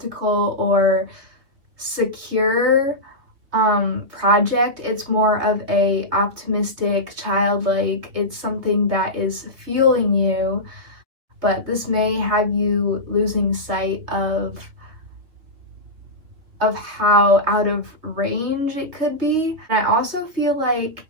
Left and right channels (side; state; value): left; late; 3.0 ms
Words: or secure project. It's more of a optimistic, childlike, it's something that is fueling you, but this may have you losing sight of how out of range it could be. And I also feel like